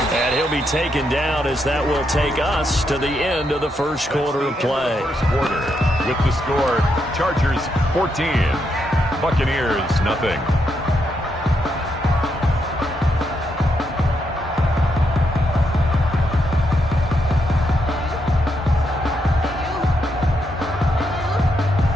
And he'll be taken down as that will take us to the end of the first quarter of play. First quarter with the score, Chargers 14, Buccaneers nothing.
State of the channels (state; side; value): normal; both; correlation 0.80